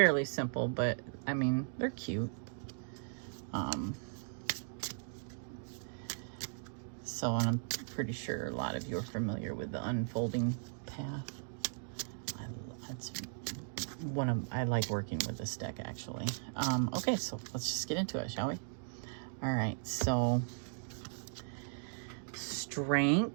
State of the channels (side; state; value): left; silent; digital silence